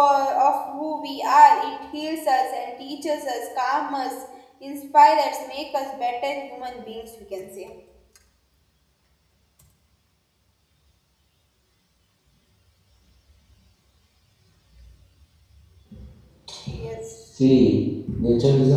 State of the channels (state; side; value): identical; both; correlation 1.00